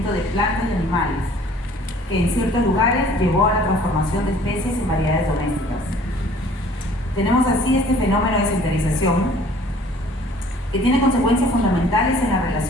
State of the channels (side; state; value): both; normal; correlation 0.53